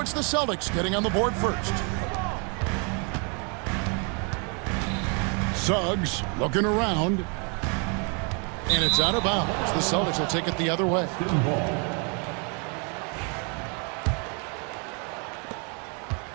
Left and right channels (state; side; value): quieter; left; 36.0 dB